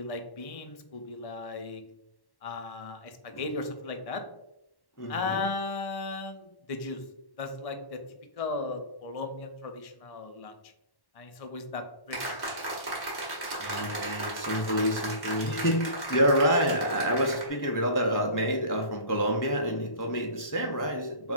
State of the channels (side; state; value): right; late; 1.1 ms